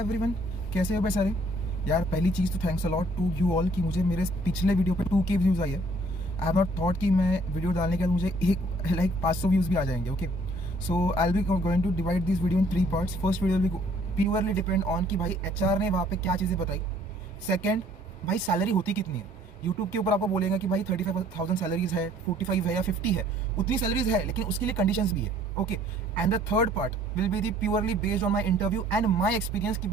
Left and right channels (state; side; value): normal; both; correlation 0.59